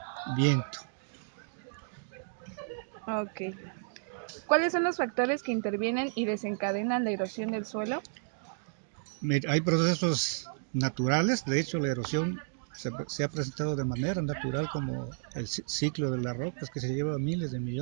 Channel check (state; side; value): silent; left; digital silence